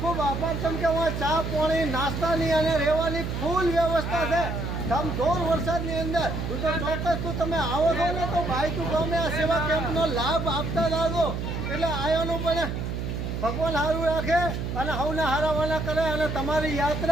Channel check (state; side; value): noise; right; hum, 3 dB below the sound